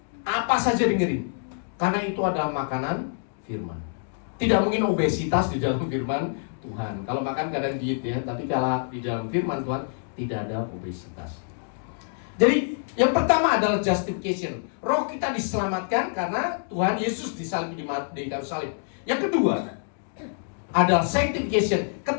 Apa saja dengerin. Karena itu adalah makanan firman. Tidak mungkin obesitas di dalam firman Tuhan. Kalau makan kadang diet, ya, tapi kalau di dalam firman Tuhan tidak ada obesitas. Jadi yang pertama adalah justification. Roh kita diselamatkan karena Tuhan Yesus disalib di kayu salib. Yang kedua adalah sanctification.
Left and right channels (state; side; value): silent; right; digital silence